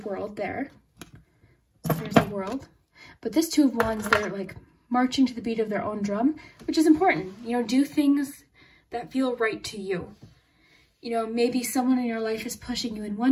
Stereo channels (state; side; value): identical; both; correlation 1.00